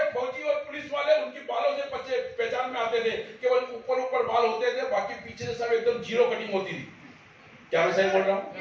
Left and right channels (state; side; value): identical; both; correlation 1.00